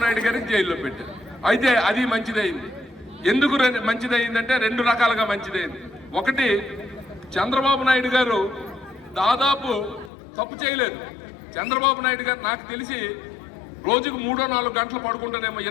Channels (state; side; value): drops out; right; at 10.1 s